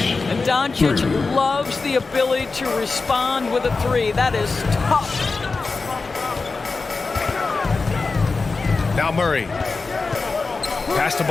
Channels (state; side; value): quieter; right; 4.1 dB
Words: And Doncic loves the ability to respond with a 3. That is tough. Now Murray. Pass to